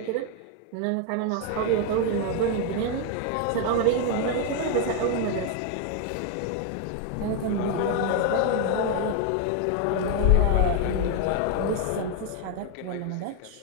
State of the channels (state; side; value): different; both; correlation 0.01